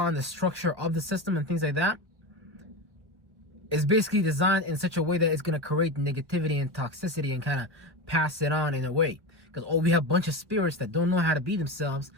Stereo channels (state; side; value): late; left; 1.5 ms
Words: and the structure of the system and things like that, is basically designed in such a way that it's going to create negativity and toxicity and kind of pass it on in a way. Because we have a bunch of spirits that don't know how to be themselves,